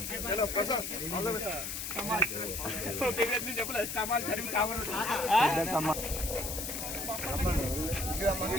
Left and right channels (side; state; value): left; noise; hiss, 5 dB below the sound